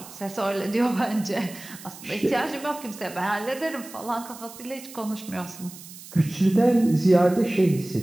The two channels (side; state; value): right; noise; hiss, 16 dB below the sound